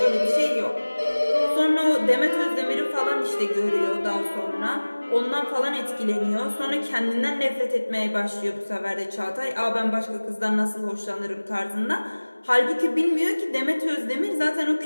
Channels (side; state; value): both; inverted; correlation -1.00